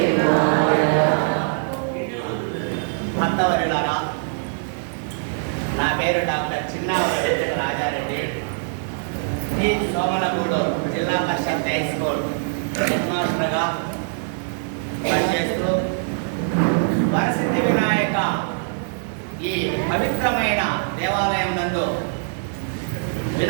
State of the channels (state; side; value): silent; left; digital silence